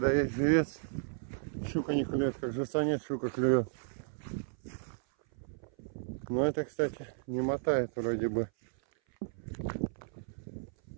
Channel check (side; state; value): left; silent; 55 dB below the other